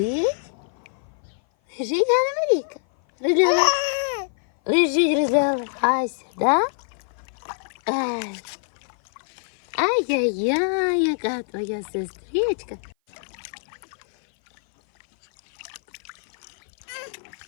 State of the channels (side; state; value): right; silent; 56 dB below the other